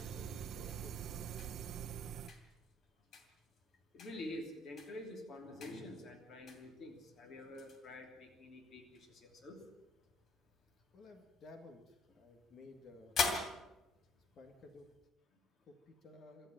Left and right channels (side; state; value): both; normal; correlation 0.62